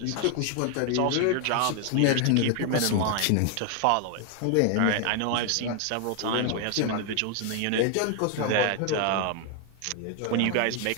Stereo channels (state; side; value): different; both; correlation 0.00